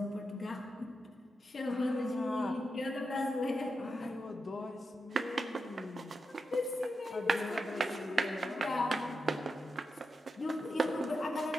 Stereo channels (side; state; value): both; normal; correlation 0.87